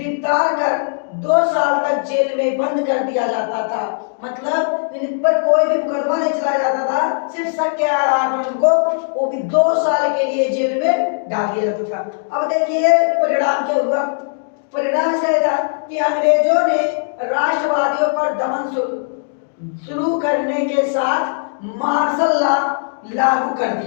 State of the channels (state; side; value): silent; right; digital silence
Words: कर 2 साल तक जेल में बंद कर दिया जाता था। मतलब इन पर कोई भी मुकदमा नहीं चलाया जाता था, सिर्फ शक के आधार पर उनको वो भी 2 साल के लिए जेल में डाल दिया जाता था। अब देखिए परिणाम क्या हुआ। परिणाम क्या था कि अंग्रेजों ने राष्ट्रवादियों पर दमन शुरू करने के साथ मार्शल लॉ लागू कर